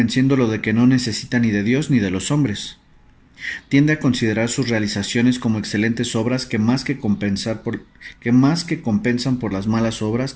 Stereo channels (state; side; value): identical; both; correlation 1.00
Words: de que no necesita ni de Dios ni de los hombres. Tiende a considerar sus realizaciones como excelentes obras que más que compensan por las malas obras